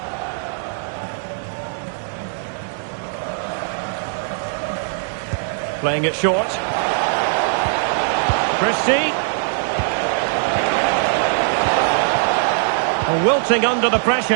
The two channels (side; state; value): left; silent; digital silence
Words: Playing it short. Christie. Wilting under the